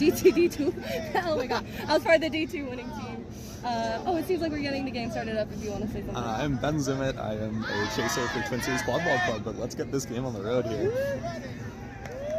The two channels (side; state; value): both; identical; correlation 1.00